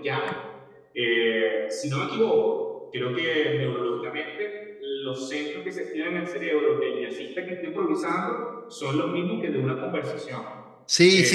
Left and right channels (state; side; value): identical; both; correlation 1.00